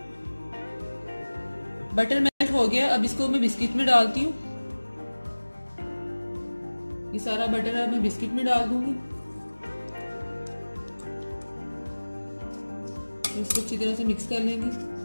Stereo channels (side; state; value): both; inverted; correlation -1.00